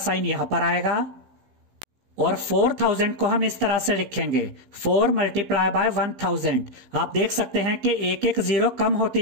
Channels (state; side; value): late; left; 15 ms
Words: यहां पर आएगा, और 4000 को हम इस तरह से लिखेंगे, 4 मल्टीप्लाई बाय 1000। आप देख सकते हैं कि एक एक 0 कम होती